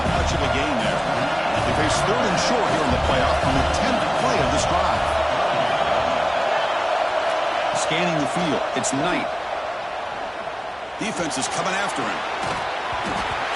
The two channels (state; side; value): identical; both; correlation 1.00